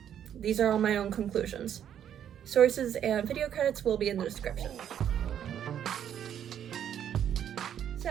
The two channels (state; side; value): quieter; left; 9.6 dB